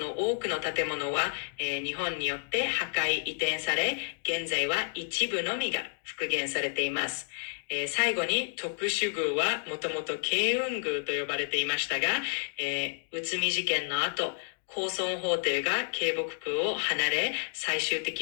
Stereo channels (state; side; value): silent; right; digital silence